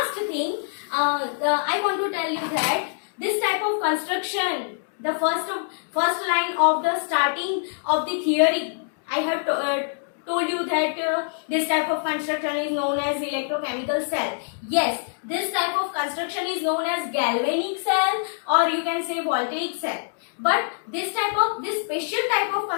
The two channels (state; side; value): silent; right; digital silence